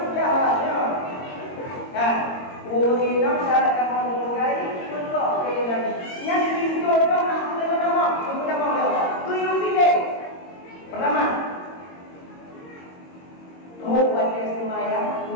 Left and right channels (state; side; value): late; right; 22 ms